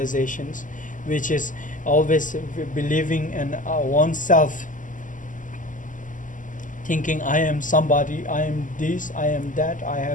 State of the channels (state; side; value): late; right; 0.38 ms